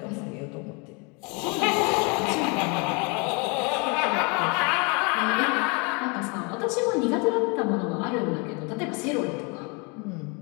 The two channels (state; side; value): quieter; right; 31.7 dB